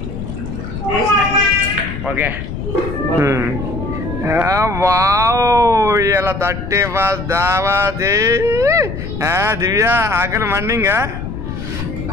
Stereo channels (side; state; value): left; noise; rumble, 7 dB below the sound